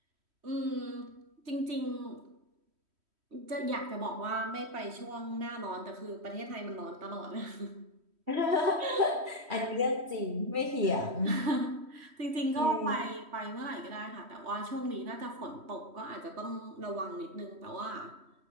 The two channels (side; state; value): left; late; 3.1 ms